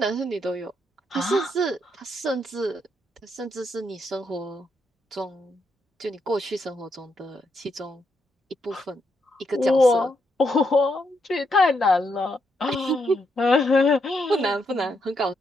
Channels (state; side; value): normal; both; correlation 0.79